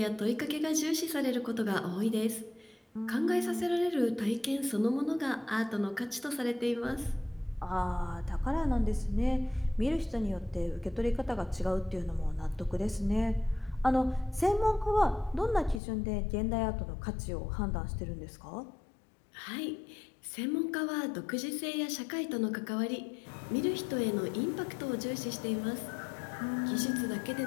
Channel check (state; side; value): drops out; right; at 15.8 s